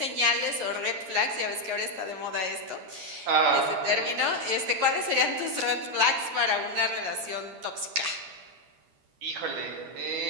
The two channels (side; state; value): left; late; 11 ms